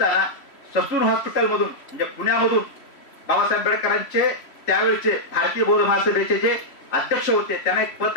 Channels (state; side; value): late; right; 3.1 ms